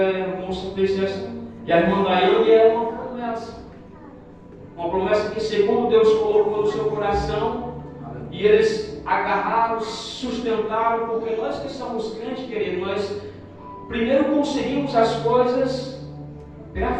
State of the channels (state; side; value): identical; both; correlation 1.00